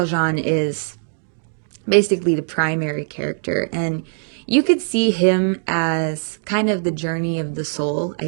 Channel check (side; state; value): left; silent; digital silence